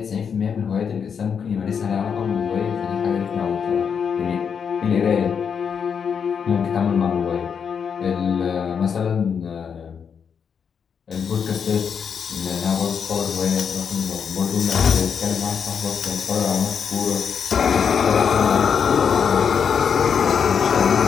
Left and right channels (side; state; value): right; quieter; 6.9 dB